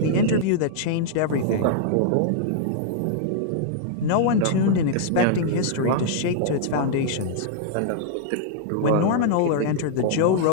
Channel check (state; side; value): different; both; correlation -0.01